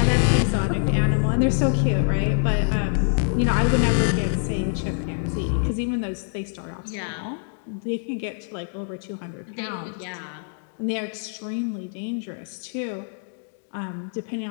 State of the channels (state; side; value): silent; right; digital silence